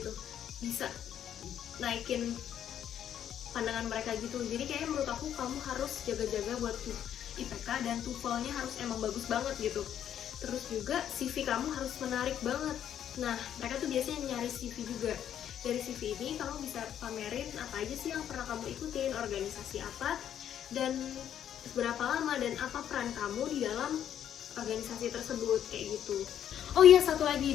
bisa naikin pandangan mereka gitu. Jadi kayaknya menurut aku kamu harus jaga-jaga buat IPK, dan TOEFL-nya harus emang bagus banget gitu. Terus juga CV kamu harus menarik banget. Nah, mereka tuh biasanya nyari CV juga. Dari CV ini kamu bisa pamerin apa aja sih yang pernah kamu ikutin, organisasi apa, dan berapa lama, dan apa peran kamu di dalam organisasi tersebut, kayak gitu. Oh iya, satu lagi,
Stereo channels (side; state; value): right; quieter; 10.0 dB